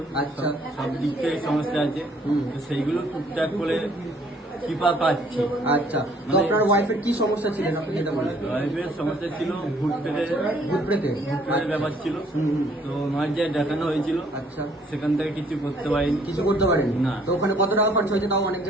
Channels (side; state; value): both; normal; correlation 0.62